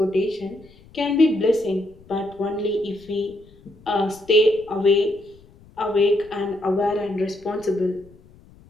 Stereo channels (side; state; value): left; noise; rumble, 25 dB below the sound